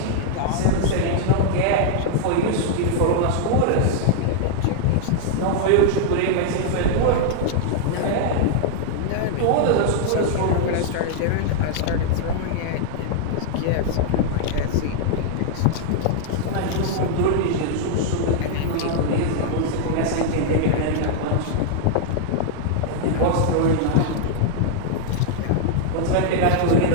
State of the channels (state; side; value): different; both; correlation -0.01